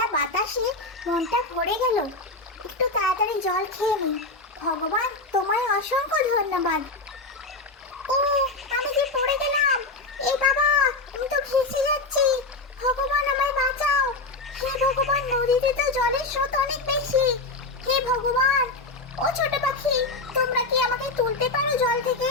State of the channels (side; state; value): right; quieter; 3.2 dB